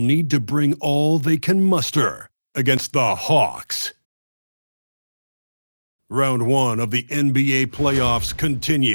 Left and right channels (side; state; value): both; inverted; correlation -1.00